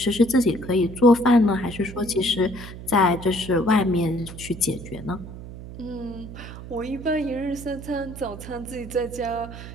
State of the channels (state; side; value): noise; right; hum, 12 dB below the sound